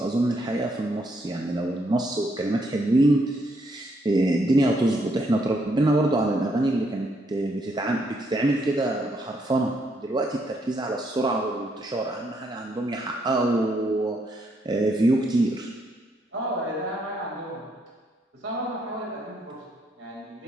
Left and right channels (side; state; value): both; normal; correlation 0.74